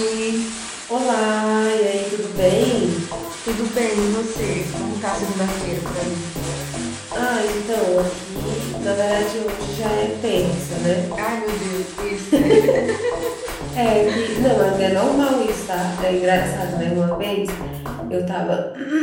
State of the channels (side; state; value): both; identical; correlation 1.00